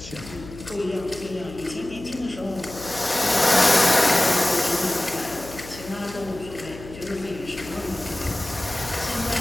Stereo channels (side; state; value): left; noise; hum, 15 dB below the sound